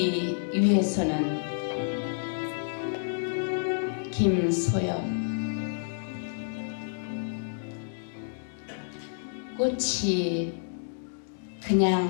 위해서는 김소연. 꽃이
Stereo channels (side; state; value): right; silent; digital silence